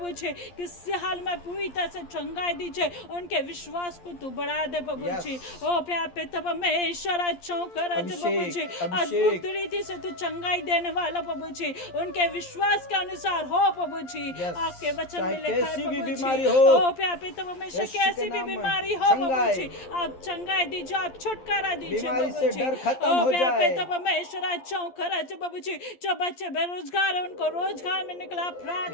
जी, किसी हाल में पूरी तरह से चंगाई दीजिए, उनके विश्वास को तू बढ़ा दे प्रभु जी। ओ प्यार पे तब परमेश्वर प्रभु जी, अद्भुत रीति से तू चंगाई देने वाला प्रभु जी, उनके विश्वास के अनुसार हो प्रभु जी। आपके वचन में लिखा है प्रभु जी, ओ प्यार पे तब परमेश्वर कैसी भी बीमारी हो प्रभु जी आप चंगाई दीजिए, आप छुटकारा दीजिए प्रभु जी। ओ प्यार पे तब परमेश्वर प्रभु जी, जो बच्चे बेरोजगार है उनको रोजगार में निकला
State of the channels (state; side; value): late; right; 11 ms